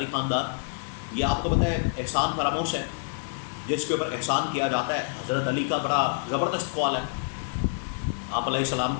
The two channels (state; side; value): silent; right; digital silence